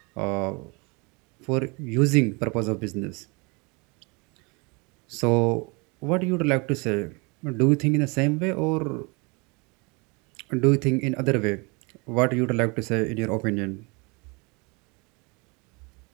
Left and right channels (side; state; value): left; quieter; 29.2 dB